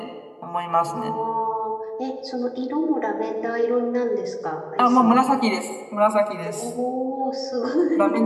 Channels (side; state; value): both; identical; correlation 1.00